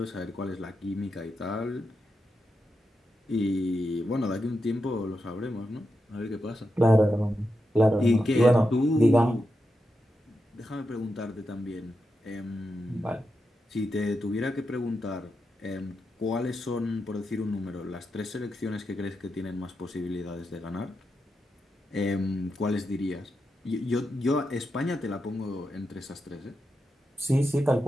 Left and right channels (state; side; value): normal; both; correlation 0.87